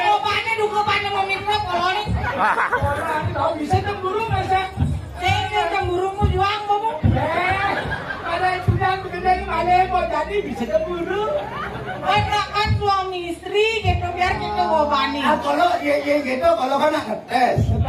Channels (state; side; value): identical; both; correlation 1.00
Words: Tahu bisa cemburu masa? Cemburumu juang kamu. Ada itu yang bekerja Malibu jadi bisa cemburu. Kan suami istri gitu biar kita bobani. Kalau ya gitu kalau kan ngetes.